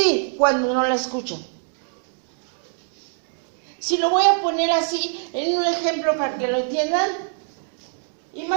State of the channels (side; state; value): left; silent; 63 dB below the other